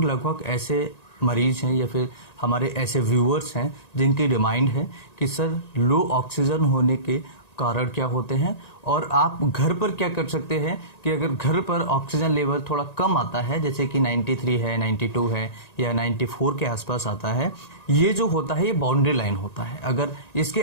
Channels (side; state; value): right; late; 1.9 ms